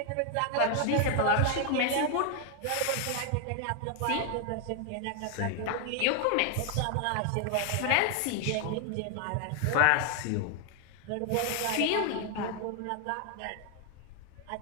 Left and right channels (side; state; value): both; different; correlation 0.00